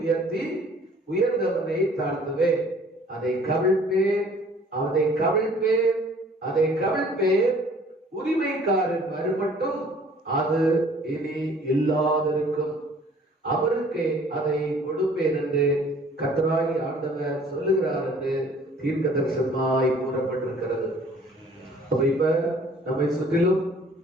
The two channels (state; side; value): normal; both; correlation 0.54